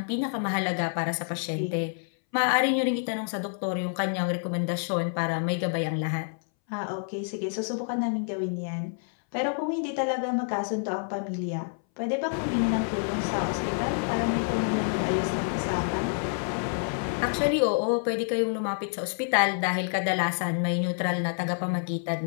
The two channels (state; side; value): silent; right; 59 dB below the other